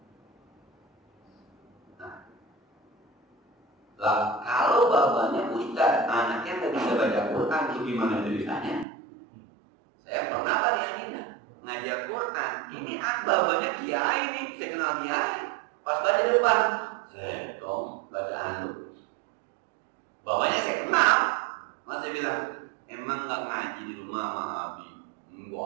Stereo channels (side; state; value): left; drops out; at 8.8 s